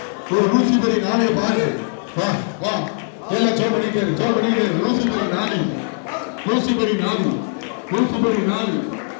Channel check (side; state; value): right; silent; 64 dB below the other